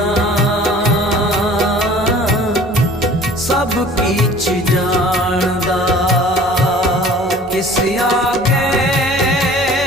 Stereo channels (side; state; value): both; normal; correlation 0.47